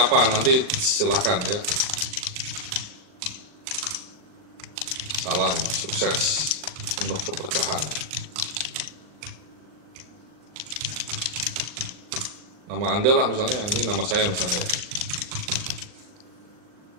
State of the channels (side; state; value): left; late; 39 ms